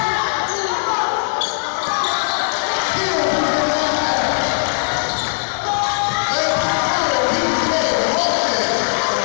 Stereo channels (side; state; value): right; silent; 67 dB below the other